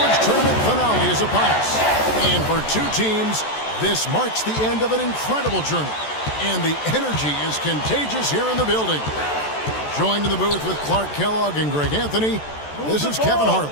tournament finale is upon us. And for two teams, this marks the end of an incredible journey. And the energy is contagious here in the building. Joined in the booth with Clark Kellogg and Greg Anthony, this is Kevin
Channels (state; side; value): late; right; 14 ms